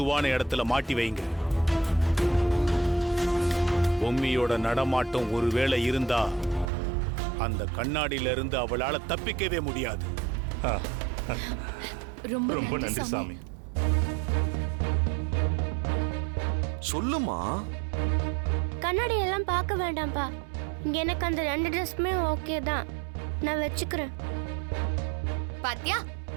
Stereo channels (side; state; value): left; drops out; at 6.7 s